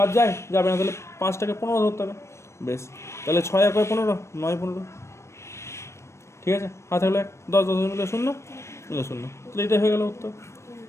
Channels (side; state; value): right; late; 0.13 ms